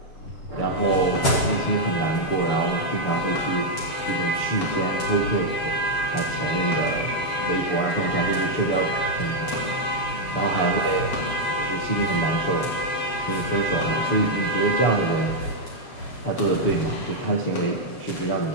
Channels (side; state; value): right; late; 7.4 ms